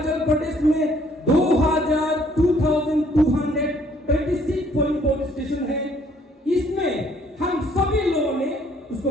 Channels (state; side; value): normal; both; correlation 0.63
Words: प्रदेश में 2226 पोलिंग पुलिस स्टेशन है। इसमें हम सभी लोगों ने उसको